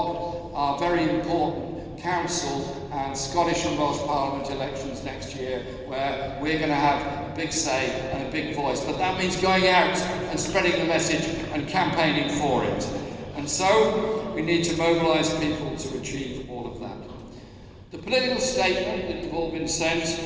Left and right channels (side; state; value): both; identical; correlation 1.00